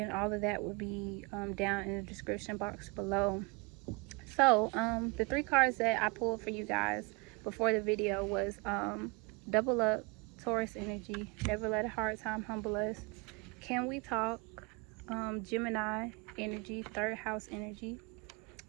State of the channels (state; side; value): quieter; left; 29.3 dB